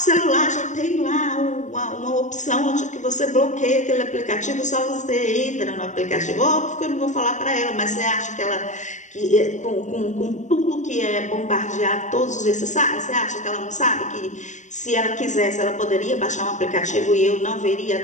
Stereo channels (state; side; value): late; right; 0.35 ms